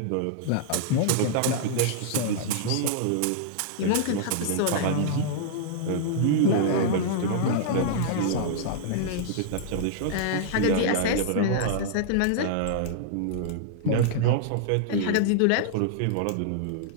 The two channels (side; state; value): both; different; correlation -0.01